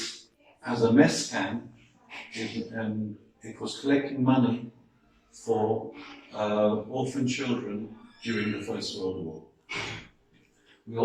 as a mess camp, and it was collecting money for orphan children during the First World War. We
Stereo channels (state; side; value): identical; both; correlation 1.00